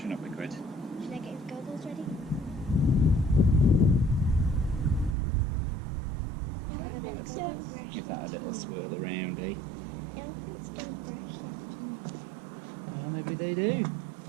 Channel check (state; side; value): drops out; left; at 5.2 s